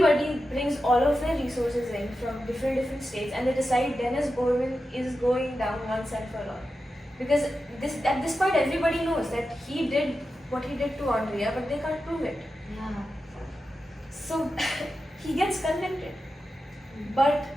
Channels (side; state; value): both; normal; correlation 0.91